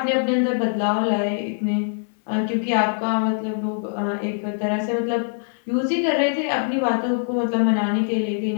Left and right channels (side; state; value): right; silent; 64 dB below the other